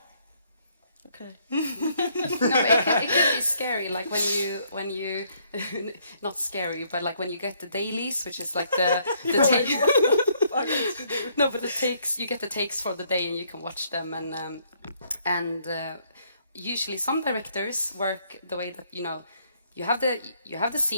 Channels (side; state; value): both; inverted; correlation -0.68